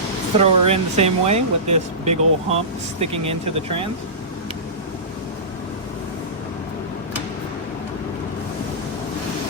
throw her in the same way with this big old hump sticking into the trans.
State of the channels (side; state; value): both; normal; correlation -0.20